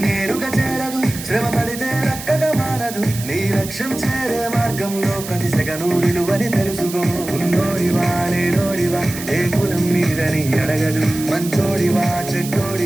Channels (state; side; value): noise; right; hiss, 11 dB below the sound